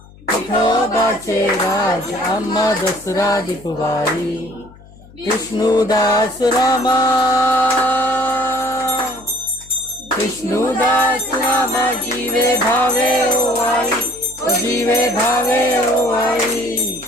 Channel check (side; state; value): left; noise; hum, 23 dB below the sound